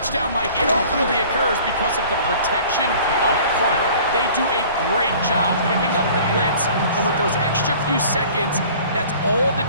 Mike, it ultimately occurs because of the protection up front. They do a great job picking up the blitz, and with those extra few seconds, that's all the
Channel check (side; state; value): both; inverted; correlation -0.48